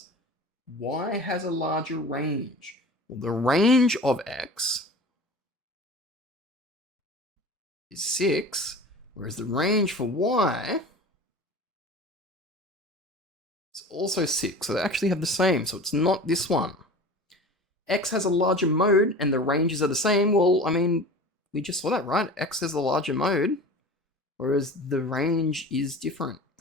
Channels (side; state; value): both; normal; correlation 0.37